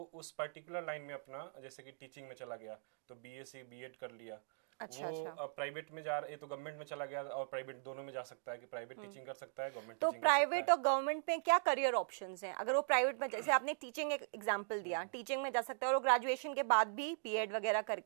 उस पर्टिकुलर लाइन में अपना, जैसे कि टीचिंग में चला गया तो बीएससी बीएड कर लिया। वो प्राइवेट में जा रहा है तो गवर्नमेंट में चला गया और प्राइवेट दोनों में जा सकता है कि प्राइवेट टीचिंग कर सकता है, गवर्नमेंट टीचिंग कर सकता है। तो प्राइवेट और गवर्नमेंट में क्या करियर ऑप्शंस हैं? अगर वो प्राइवेट में, जैसे आपने टीचिंग एक एग्जांपल दिया, टीचिंग में जा सकता है और वो ग्रेजुएशन के बाद भी बीएड वगैरह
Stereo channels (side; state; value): left; silent; digital silence